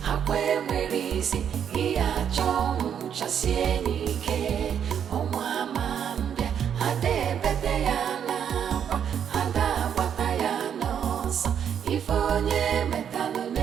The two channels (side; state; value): left; quieter; 8.5 dB